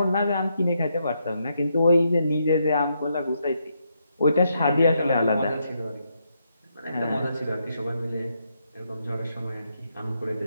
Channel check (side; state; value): both; inverted; correlation -0.79